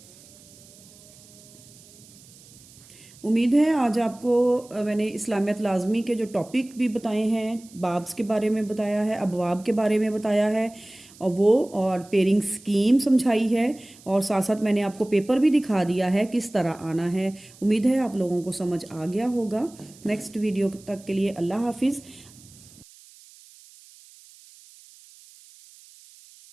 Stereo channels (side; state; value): right; noise; hiss, 23 dB below the sound